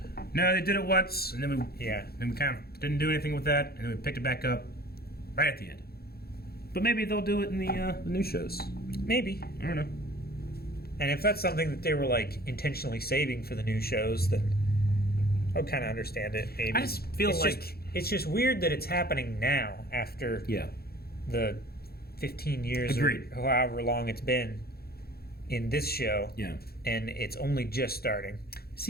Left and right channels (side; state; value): right; late; 0.45 ms